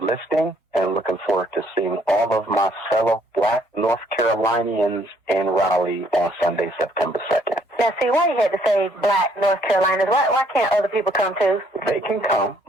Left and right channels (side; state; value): both; normal; correlation 0.65